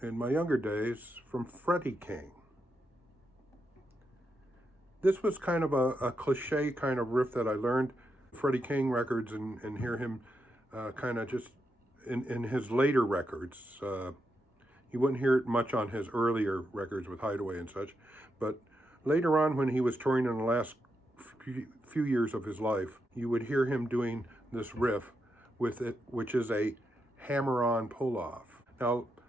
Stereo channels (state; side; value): normal; both; correlation 0.84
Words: my younger days from Freddie King. This was kind of a cliche kind of riff that I learned Freddie King records and hear him kind of just in his later records. You wouldn't hear it much on his earlier records with Hideaway and such, but later on when he was touring in the last few years of his life, you would hear him doing this riff with it, which is a hammer-on pull-off. Now,